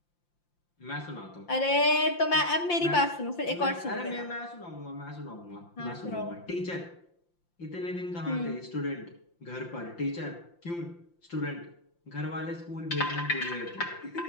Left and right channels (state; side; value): late; right; 5.8 ms